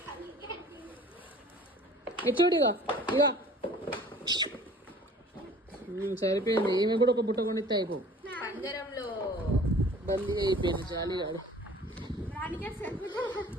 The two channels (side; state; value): both; normal; correlation 0.49